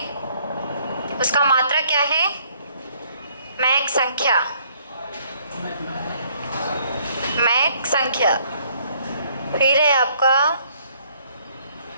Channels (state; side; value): inverted; both; correlation -0.64